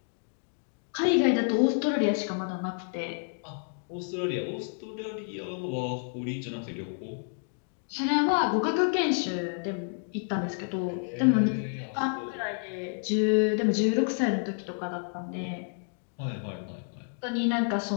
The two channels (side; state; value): right; silent; 58 dB below the other